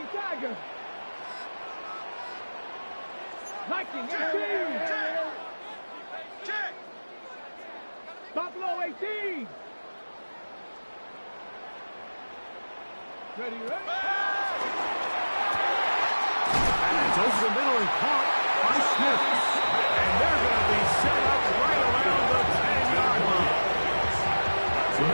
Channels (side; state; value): both; inverted; correlation -1.00